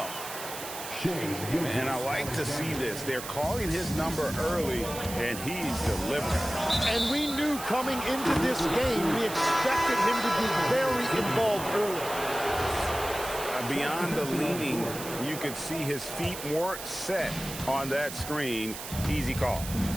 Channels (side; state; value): right; noise; hiss, 9 dB below the sound